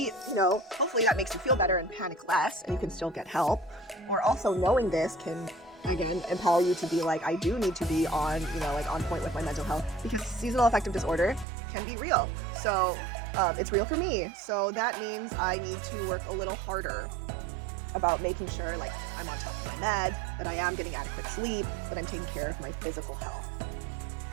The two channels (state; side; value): drops out; left; at 11.5 s